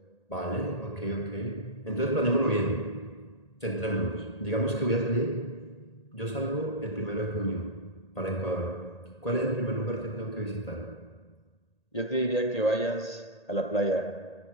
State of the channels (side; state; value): right; late; 1.8 ms